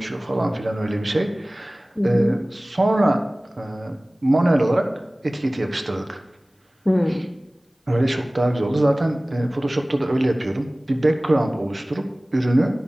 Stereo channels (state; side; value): normal; both; correlation 0.98